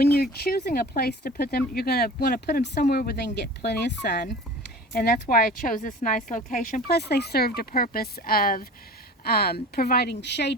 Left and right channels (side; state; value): both; normal; correlation 0.39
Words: you're choosing a place to put them, you're going to want to put them somewhere where they can get plenty of sun. And that's why I chose this nice location. Plus, they served a purpose of providing